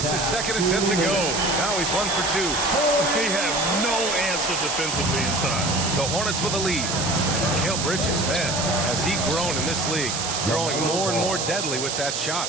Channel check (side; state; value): right; noise; hiss, 2 dB below the sound